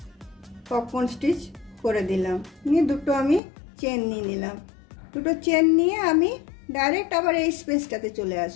পপকর্ন স্টিচ করে দিলাম, নিয়ে 2টো আমি চেন নিয়ে নিলাম। 2টো চেন নিয়ে আমি ডাইরেক্ট আবার এই স্পেসটাতে চলে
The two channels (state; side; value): drops out; right; at 3.4 s